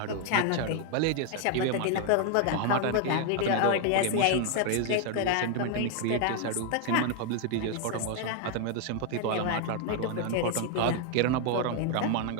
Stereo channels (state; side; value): different; both; correlation 0.00